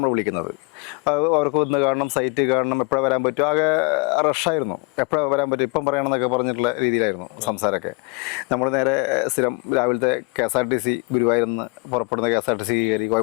വിളിക്കുന്നത്. അവർക്ക് വന്ന് കാണണം, സൈറ്റ് കാണണം, എപ്പോഴാണ് വരാൻ പറ്റും. ആകെ റഷായിരുന്നു, എപ്പോഴാണ് വരാൻ പറ്റും, ഇപ്പം പറയണമെന്നൊക്കെ പറഞ്ഞിട്ടുള്ള രീതിയിലായിരുന്നു സംസാരമൊക്കെ. നമ്മൾ നേരെ സ്ഥിരം രാവിലത്തെ KSRTC ഗുരുവായൂരിൽ നിന്ന് പുറപ്പെടുന്ന KSRTC കയറി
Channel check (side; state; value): right; quieter; 30.8 dB